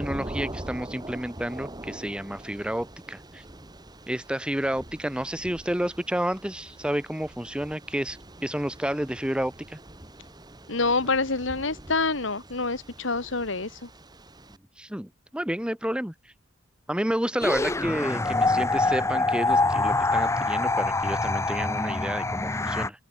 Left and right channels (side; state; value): both; normal; correlation 0.58